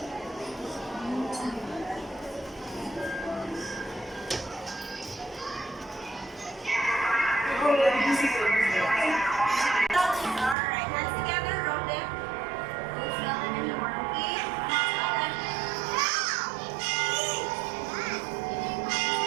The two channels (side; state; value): left; drops out; at 10.6 s